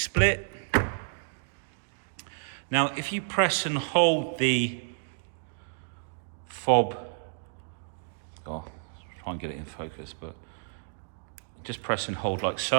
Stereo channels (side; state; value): left; silent; digital silence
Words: Now, if you press and hold the fob, try and get it in focus, but just press and hold like